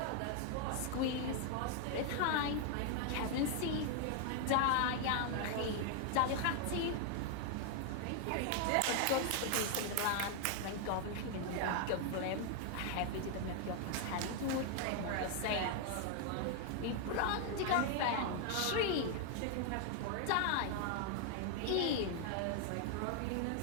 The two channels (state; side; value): different; both; correlation 0.00